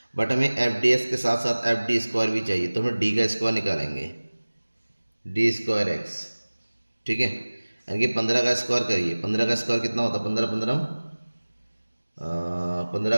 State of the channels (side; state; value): both; inverted; correlation -1.00